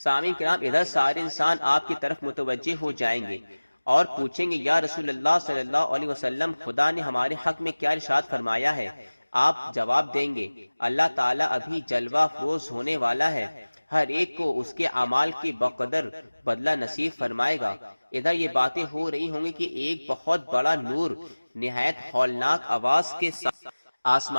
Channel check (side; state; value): both; inverted; correlation -1.00